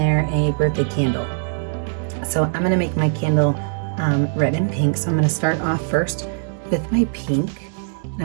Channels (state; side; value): silent; left; digital silence